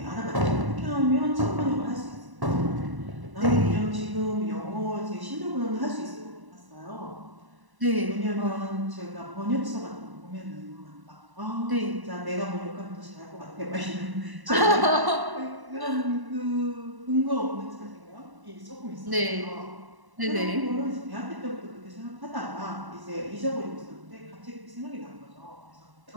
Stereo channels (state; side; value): late; left; 1.0 ms